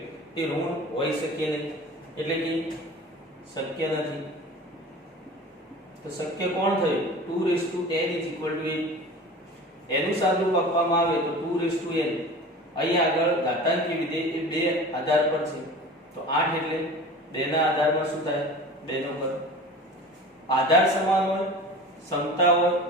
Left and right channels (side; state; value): both; normal; correlation 0.38